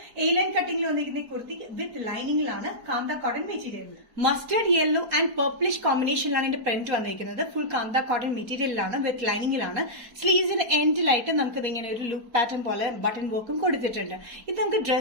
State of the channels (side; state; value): left; late; 4.5 ms